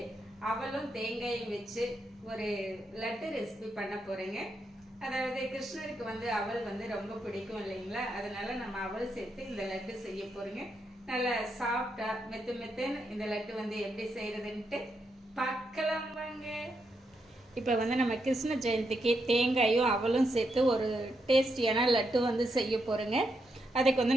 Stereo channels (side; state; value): both; normal; correlation 0.81